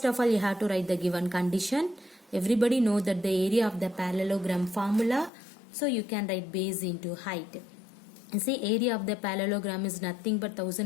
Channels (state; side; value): drops out; right; at 5.3 s